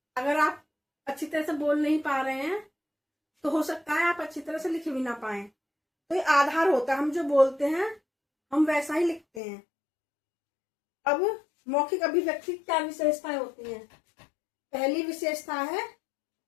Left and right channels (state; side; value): drops out; right; at 9.4 s